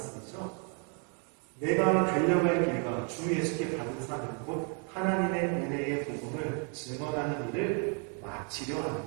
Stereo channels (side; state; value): left; quieter; 39.2 dB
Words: 내가 달려갈 길과 주 예수께 받은 사명 곧 하나님의 은혜의 복음을 증언하는 일을 마치려